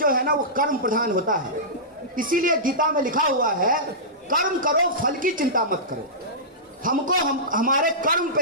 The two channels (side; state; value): both; normal; correlation -0.17